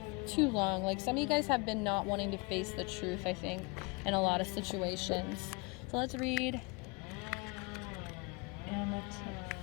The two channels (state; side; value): quieter; right; 28.8 dB